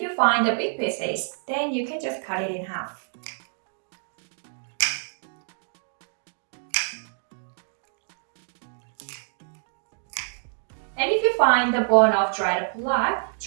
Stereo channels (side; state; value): left; silent; digital silence